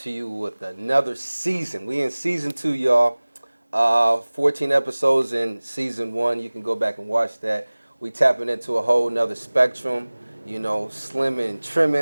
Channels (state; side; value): inverted; both; correlation -1.00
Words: you with another season. We in season 2, y'all. 14 episodes in season 1. You can go back and watch that. We tapping into a whole nother spectrum. Slimming and